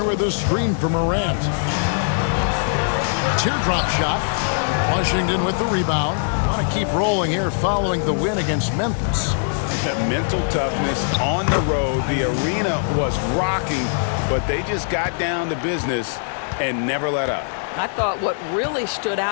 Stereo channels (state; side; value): silent; right; 55 dB below the other